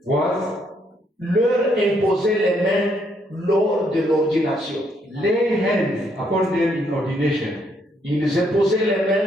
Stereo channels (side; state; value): both; normal; correlation 0.72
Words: was leur imposer les mains lors de l'ordination. Lay hands upon them in ordination. Ils imposaient les